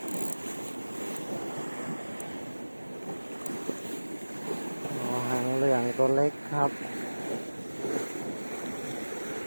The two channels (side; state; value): both; inverted; correlation -1.00